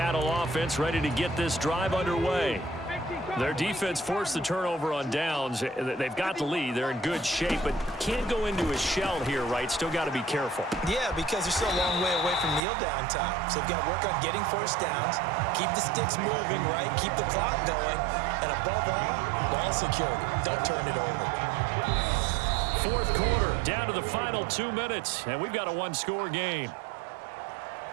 offense ready to get this drive underway. Their defense forced the turnover on downs. They've got the lead. They're in good shape, but can't go into a shell here, right? Still got to be careful. Yeah, because they're still a long way away from kneel down time. So they've got to work on getting first downs, keep the sticks moving, right? Keep the clock going, and above all, ball security. Don't turn it over. 4th quarter, down to the final 2 minutes, and we've got a one-score game.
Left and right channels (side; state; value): left; drops out; at 12.6 s